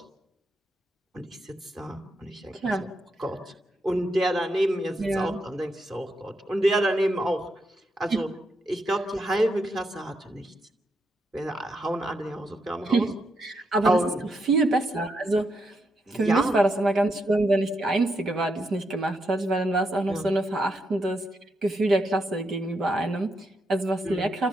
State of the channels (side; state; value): both; normal; correlation 0.81